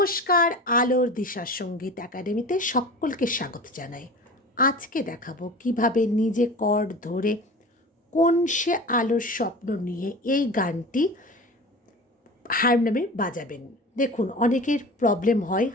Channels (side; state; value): both; normal; correlation 0.36